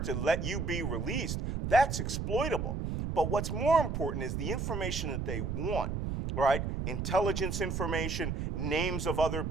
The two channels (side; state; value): right; noise; rumble, 2 dB below the sound